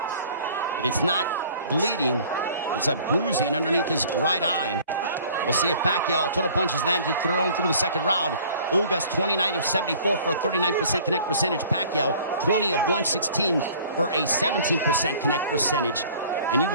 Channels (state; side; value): inverted; both; correlation -0.51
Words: but it's not bleeding. It's a bruising underneath his right eye. We'll see if Pacquiao, total punches landed, thrown through the second round. Ugas 29 of 74 for a 39% connect percentage. Pacquiao 20 of 116 for a 17% connect percentage. And you